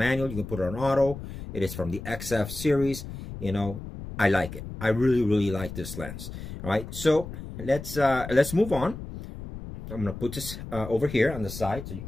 you can put it on auto. It is from the XF series. You know, I like it. I really like this lens. All right, so let's move on. I'm gonna put this over here on the side so you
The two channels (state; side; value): noise; left; rumble, 10 dB below the sound